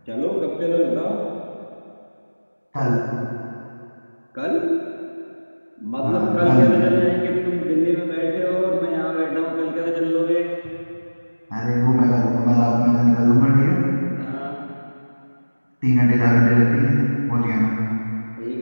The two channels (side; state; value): both; inverted; correlation -1.00